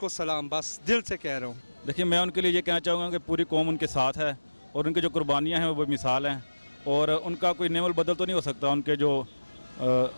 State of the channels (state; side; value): inverted; both; correlation -1.00